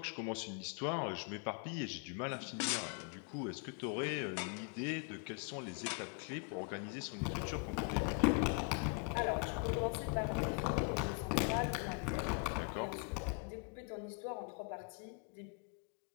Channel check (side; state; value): right; quieter; 34.6 dB